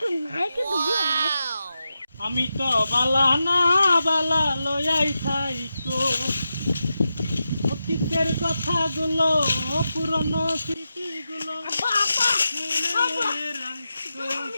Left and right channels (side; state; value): both; inverted; correlation -0.90